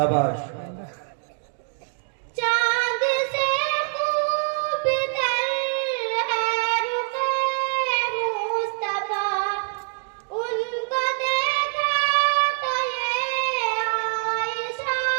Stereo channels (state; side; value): silent; left; digital silence